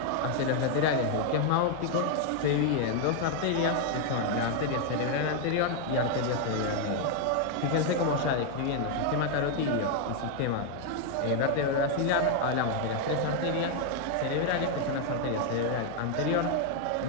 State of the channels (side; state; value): both; different; correlation 0.00